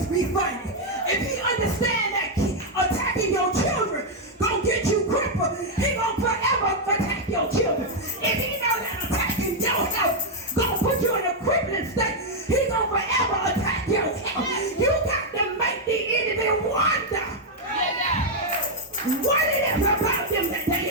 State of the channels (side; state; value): both; normal; correlation -0.01